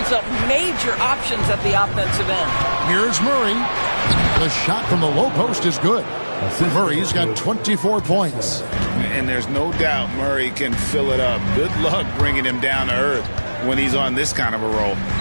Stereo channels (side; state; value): both; inverted; correlation -1.00